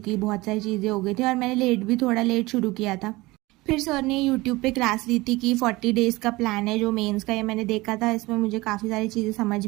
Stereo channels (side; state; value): left; quieter; 21.0 dB